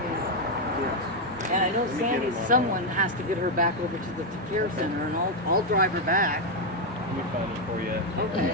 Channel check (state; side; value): normal; both; correlation 0.03